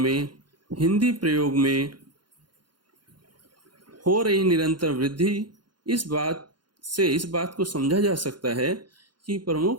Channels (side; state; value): left; late; 0.71 ms